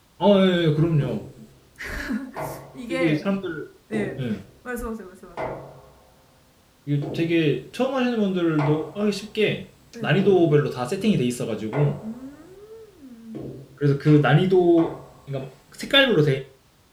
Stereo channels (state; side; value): identical; both; correlation 1.00